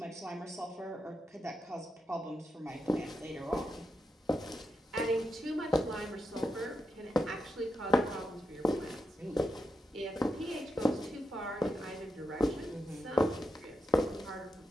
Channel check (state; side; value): normal; both; correlation 0.86